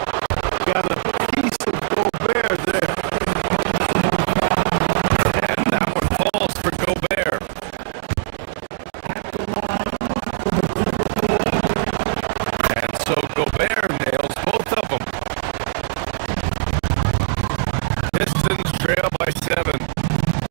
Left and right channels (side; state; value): left; silent; digital silence